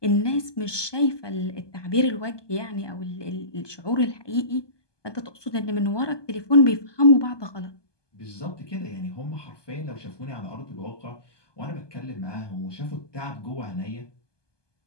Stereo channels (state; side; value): late; right; 1.2 ms